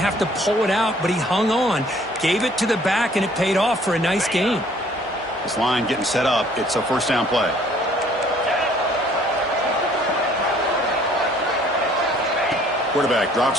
to pull it out, but he hung on, gave it to the back, and it paid off for a nice gain. This line getting set up. It's a first down play. Quarterback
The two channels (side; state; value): both; normal; correlation 0.58